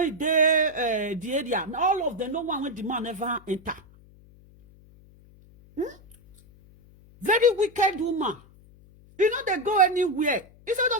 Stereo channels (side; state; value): left; noise; hum, 26 dB below the sound